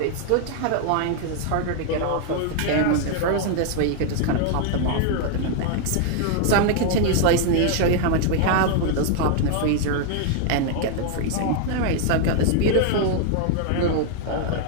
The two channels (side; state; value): both; different; correlation 0.00